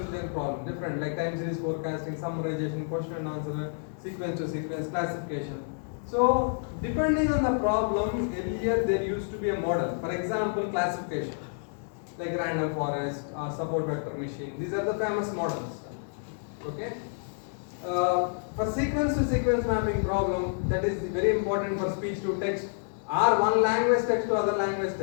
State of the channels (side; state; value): right; silent; digital silence